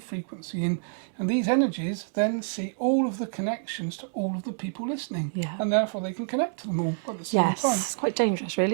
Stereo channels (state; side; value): silent; left; digital silence